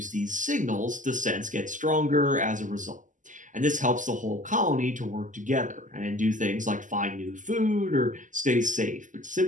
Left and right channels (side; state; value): left; late; 0.37 ms